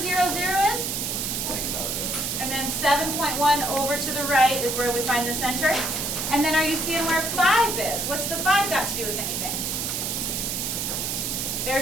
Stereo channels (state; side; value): noise; right; hiss, 1 dB below the sound